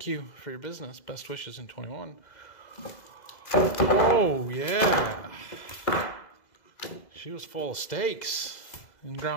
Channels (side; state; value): right; late; 2.0 ms